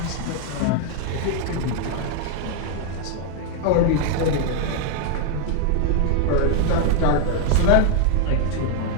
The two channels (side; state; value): both; different; correlation 0.01